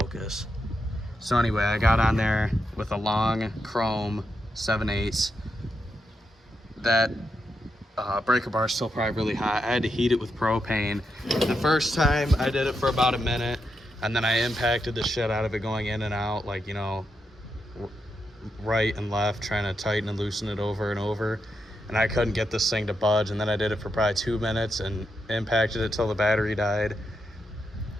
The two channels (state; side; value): normal; both; correlation 0.84